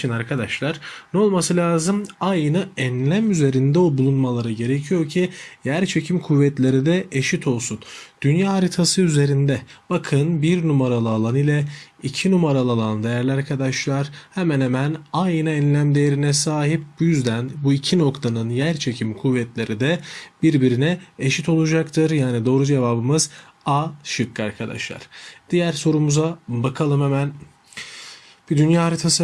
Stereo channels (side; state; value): both; identical; correlation 1.00